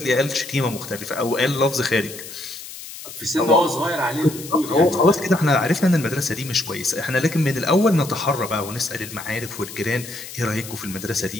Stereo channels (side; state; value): left; noise; hiss, 13 dB below the sound